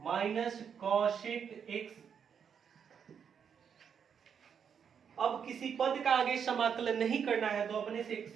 cosec x। अब किसी पद का आगे समाकलन नहीं करना है तो अपने से एक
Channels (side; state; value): left; quieter; 7.4 dB